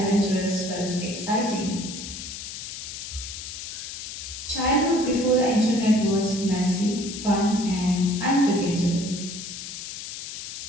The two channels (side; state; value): left; noise; hiss, 9 dB below the sound